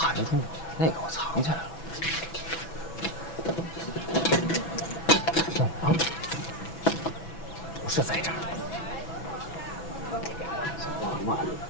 住了，那个我藏起来了。不是在这儿。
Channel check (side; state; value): right; late; 6.0 ms